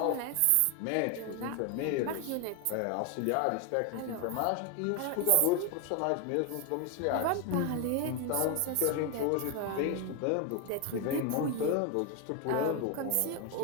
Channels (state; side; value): different; both; correlation 0.01